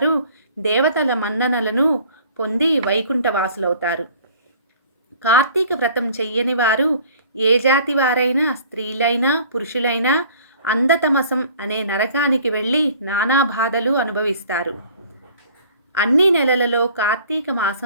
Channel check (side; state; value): both; inverted; correlation -0.51